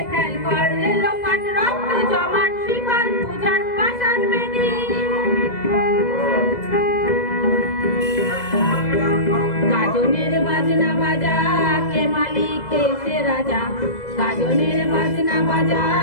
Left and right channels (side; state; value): right; late; 2.0 ms